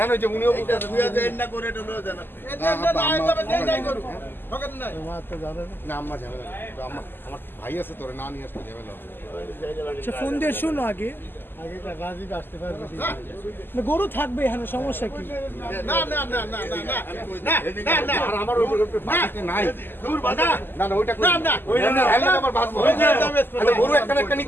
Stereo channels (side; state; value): right; late; 0.097 ms